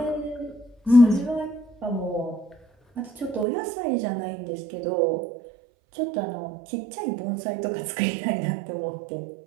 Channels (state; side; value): drops out; left; at 3.5 s